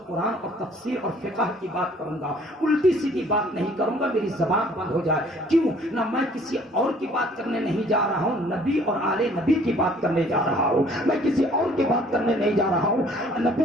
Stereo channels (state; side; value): normal; both; correlation 0.56